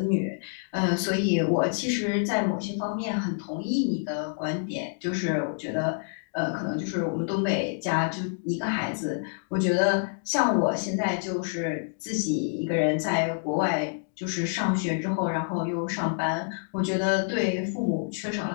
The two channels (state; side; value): silent; right; digital silence